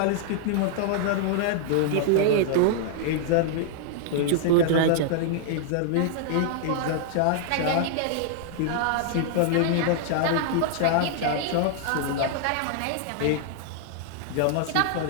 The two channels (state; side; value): different; both; correlation -0.01